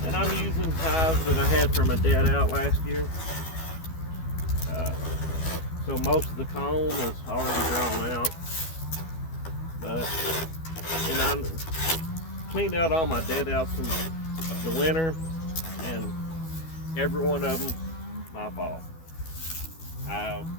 And I'm using hives that I had from a dead out last year. So most of the comb is already drawn out. And I cleaned out all my dead outs from the winter, and every one of them, my fault. I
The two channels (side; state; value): right; late; 12 ms